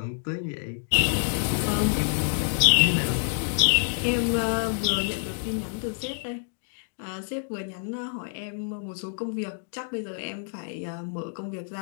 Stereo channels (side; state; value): right; silent; digital silence